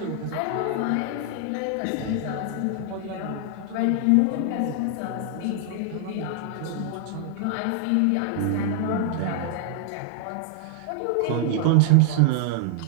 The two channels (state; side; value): different; both; correlation -0.01